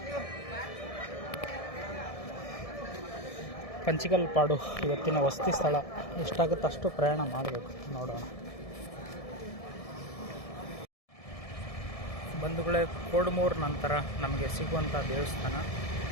ಪಂಚಿಕಲ್ಪಾಡು ಇವತ್ತಿನ ವಸತಿ ಸ್ಥಳ. ಎಷ್ಟಾಗುತ್ತೆ ಅಷ್ಟು ಪ್ರಯಾಣ ಮಾಡಬೇಕು, ನೋಡೋಣ. ಬಂಧುಗಳೇ, ಕೋಡ್ಮೂರು ನಂತರ ನಮಗೆ ಸಿಗುವಂಥ ದೇವಸ್ಥಾನ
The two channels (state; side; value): late; right; 1.7 ms